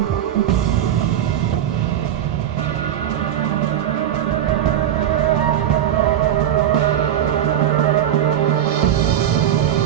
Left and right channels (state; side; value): quieter; left; 10.8 dB